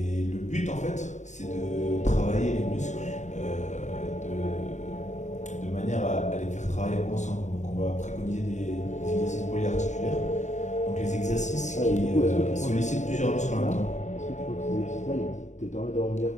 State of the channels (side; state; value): right; late; 0.34 ms